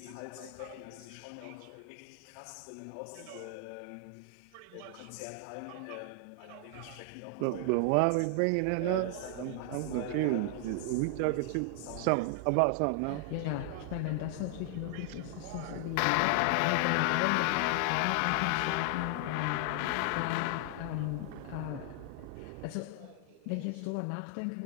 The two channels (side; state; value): both; different; correlation 0.00